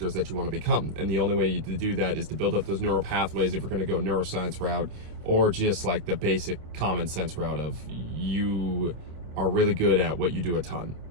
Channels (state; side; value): late; left; 27 ms